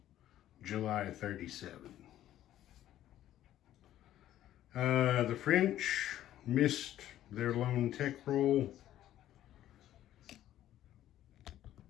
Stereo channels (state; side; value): quieter; right; 12.6 dB